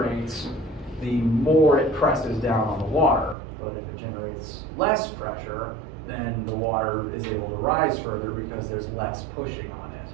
the more it presses down on the water. But if it generates less pressure, then the water is able to rise further because there's less pushing on it.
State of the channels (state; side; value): drops out; left; at 3.4 s